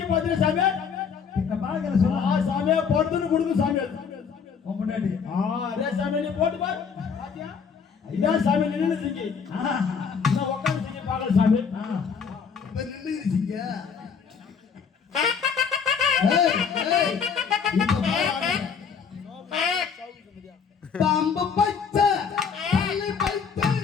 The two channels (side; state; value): right; quieter; 6.3 dB